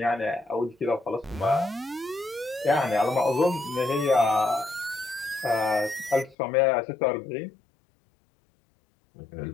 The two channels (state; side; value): drops out; right; at 6.4 s